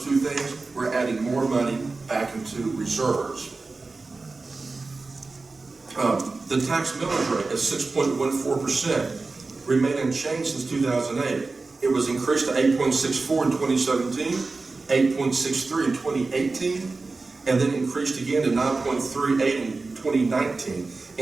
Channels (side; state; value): left; quieter; 3.8 dB